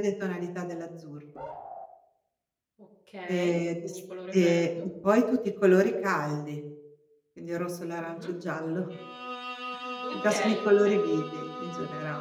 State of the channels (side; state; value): both; identical; correlation 1.00